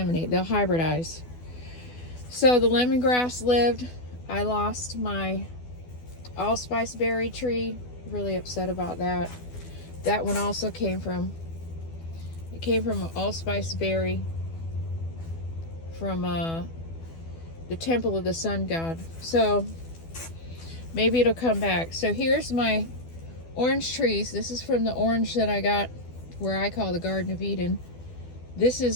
they'll hybridize. So the lemongrass lived. I lost my allspice berry tree. Really upset about that. That one also came from an allspice berry from the temple of the sun god. So maybe it'll come back. So here's my orange trees. This is from the orange that I got where I call the Garden of Eden. This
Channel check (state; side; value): late; right; 12 ms